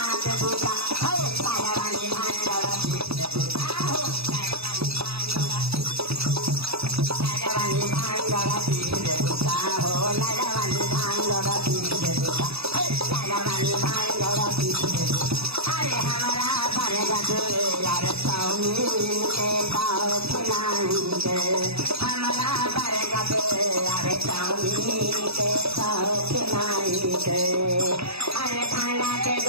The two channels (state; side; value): late; left; 0.78 ms